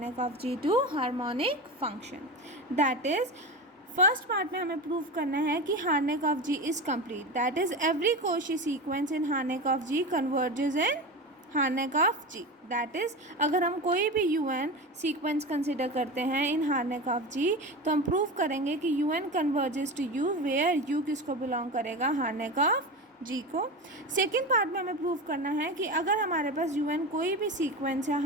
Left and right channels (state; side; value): normal; both; correlation 0.25